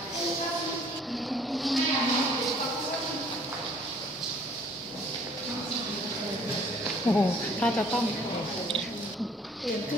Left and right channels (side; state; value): both; normal; correlation 0.57